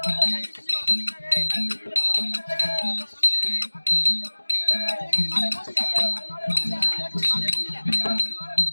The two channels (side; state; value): both; inverted; correlation -1.00